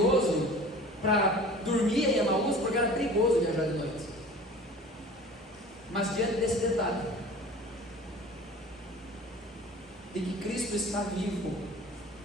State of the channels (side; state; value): both; normal; correlation 0.42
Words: para dormir em Emaús, porque era perigoso perigoso viajar de noite. Mas diante desse detalhe, de que Cristo está vivo,